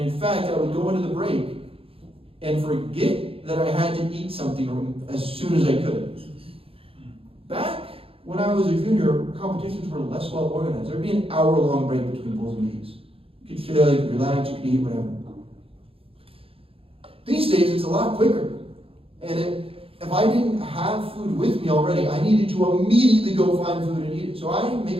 fact, I would go into the break and forget that I had to eat something as soon as I could. Back when I was a junior, competitions were less well organized. There'd be an hour-long break between pulls and knees. You could chill, you could relax, you could eat, whatever. These days, it's a lot quicker. And if I didn't have food with me already, I needed to immediately go find food and eat it. So I make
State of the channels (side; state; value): left; late; 0.27 ms